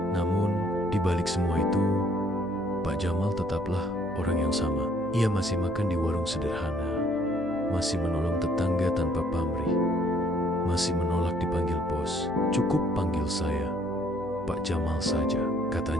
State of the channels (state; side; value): noise; right; hum, 17 dB below the sound